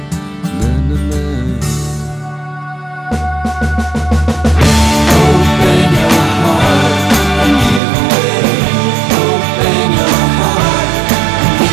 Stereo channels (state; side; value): drops out; left; at 7.8 s